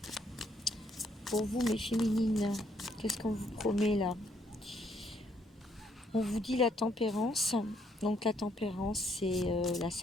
pour vous, mes féminines? Qu'est-ce qu'on vous promet là? On vous dit la tempérance. Donc la tempérance, c'est la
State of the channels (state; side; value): normal; both; correlation 0.70